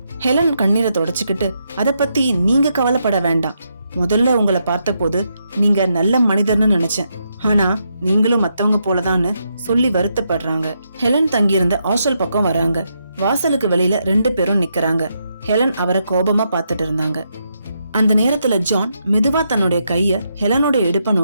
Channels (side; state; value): both; inverted; correlation -0.80